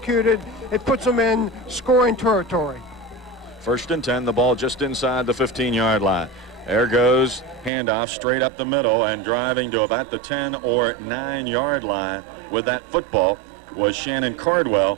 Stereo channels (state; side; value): drops out; left; at 7.7 s